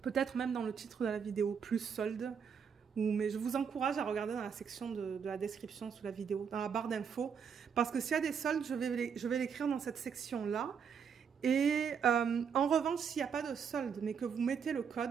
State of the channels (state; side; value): quieter; left; 6.9 dB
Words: peut-être même dans le titre de la vidéo, plus solde. Mais je vous encourage à regarder dans la section de la description sous la vidéo, dans la barre d'infos. Parce que s'il y a des soldes, je vais l'écrire dans cette section-là. Et en revanche, s'il n'y a pas de solde, mais que vous mettez le